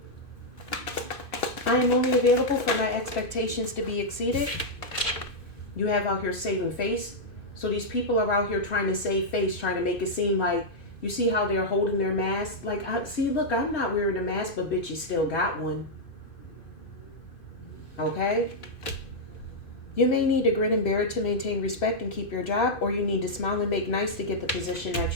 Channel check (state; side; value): late; right; 2.5 ms